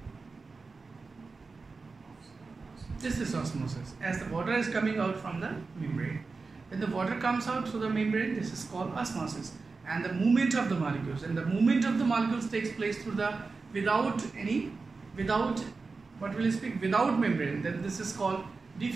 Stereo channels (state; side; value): quieter; left; 4.2 dB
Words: This is osmosis. As the water is coming out from the membrane, when the water comes out through the membrane, this is called osmosis. And the movement of the molecules, and the movement of the molecules takes place through the without what will you speak, without membrane, then this is called